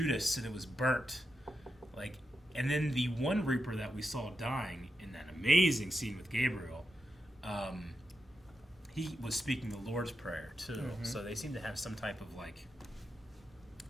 and it was burnt. Like, and then the one Reaper that we saw dying in that amazing scene with Gabriel, he was speaking the Lord's Prayer too. So they seem to have some type of like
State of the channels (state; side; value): normal; both; correlation 0.88